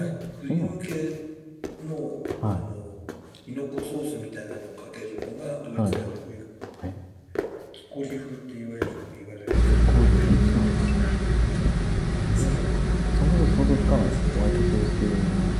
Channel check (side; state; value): both; identical; correlation 1.00